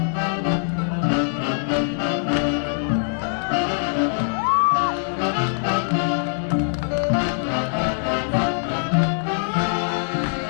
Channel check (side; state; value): right; silent; 64 dB below the other